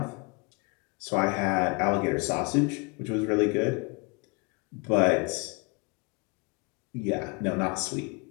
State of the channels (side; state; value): right; quieter; 30.5 dB